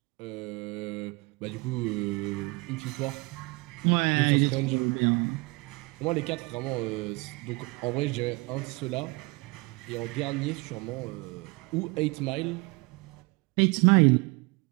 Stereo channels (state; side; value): quieter; left; 26.6 dB